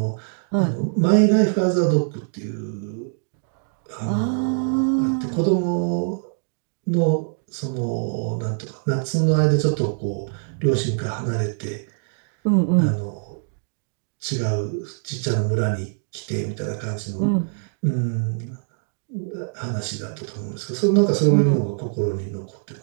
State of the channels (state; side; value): silent; left; digital silence